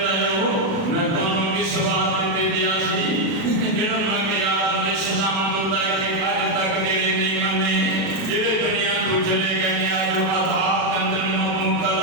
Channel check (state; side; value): late; left; 37 ms